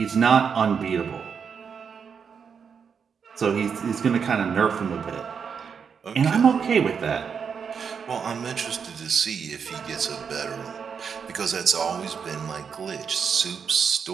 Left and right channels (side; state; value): left; quieter; 6.5 dB